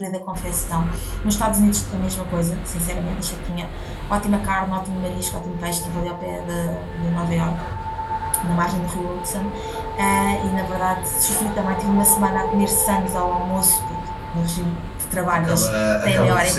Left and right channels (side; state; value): both; identical; correlation 1.00